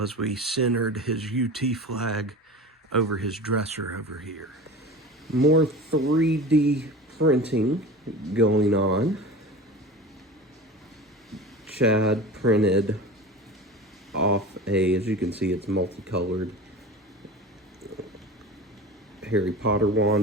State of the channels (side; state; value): both; normal; correlation 0.33